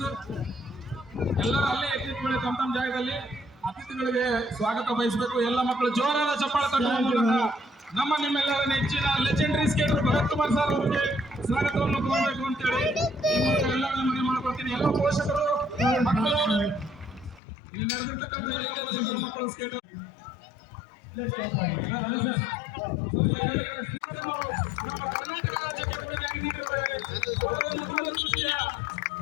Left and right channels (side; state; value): right; drops out; at 17.4 s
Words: ಎಲ್ಲರೂ ಅಲ್ಲೇ ಎತ್ತಿಟ್ಕೊಳ್ಳಿ ತಮ್ಮ ತಮ್ಮ ಜಾಗದಲ್ಲಿ. ಅತಿಥಿಗಳಿಗೆ ಸ್ವಾಗತ ಬಯಸಬೇಕು. ಎಲ್ಲ ಮಕ್ಕಳು ಜೋರಾದ ಚಪ್ಪಾಳೆ ತಟ್ಟುವ ಮೂಲಕ ನಮ್ಮ ನಿಮ್ಮೆಲ್ಲರ ನೆಚ್ಚಿನ legendary skater Bharath Kumar sir ಅವರಿಗೆ ಸ್ವಾಗತವನ್ನು ಕೋರಬೇಕು ಅಂತೇಳಿ ಎಲ್ಲ ಮನೆ ಮಾಡ್ಕೊಳ್ತೀನಿ. ಎಲ್ಲ ಪೋಷಕರು ಮಕ್ಕಳು ಇಲ್ಲಿ ನಡೆದಿರ್ತಕ್ಕಂಥ ಎಲ್ಲ ಪೋಷಕರು ಮಕ್ಕಳು ಸ್ಕೇಟರ್ ನಮ್ಮ ಕರ್ನಾಟಕ ರಾಜ್ಯಕ್ಕೆ ಕೊಡುಗೆ ನೀಡಿರುತ್ತಾರೆ. ಅವರೊಂದು ದೂರದೃಷ್ಟಿಯ